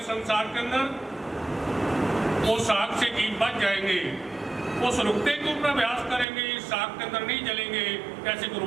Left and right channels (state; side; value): drops out; left; at 6.2 s